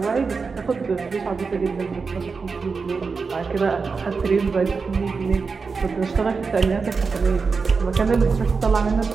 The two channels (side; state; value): left; quieter; 4.8 dB